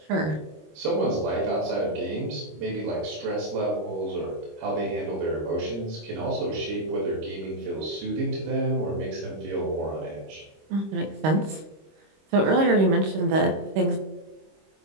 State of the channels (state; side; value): late; left; 26 ms